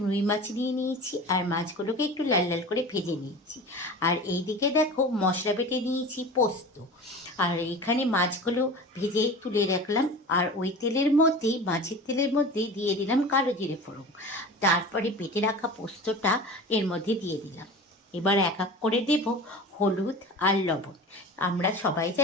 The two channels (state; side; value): normal; both; correlation 0.34